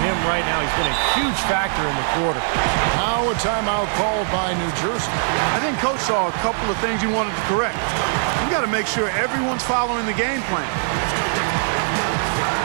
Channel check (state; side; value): silent; left; digital silence